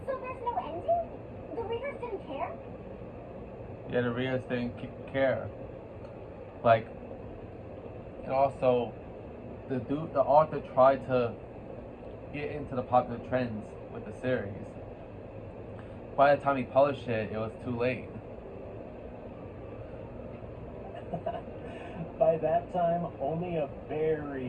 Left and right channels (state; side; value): identical; both; correlation 1.00